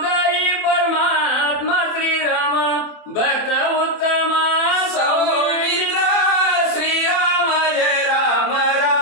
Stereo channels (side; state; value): right; late; 27 ms